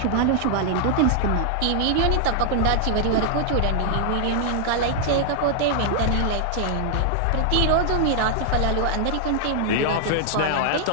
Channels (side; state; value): both; different; correlation 0.00